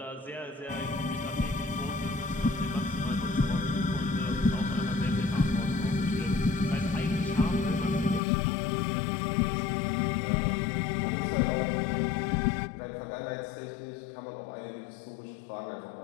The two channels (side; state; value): right; drops out; at 8.2 s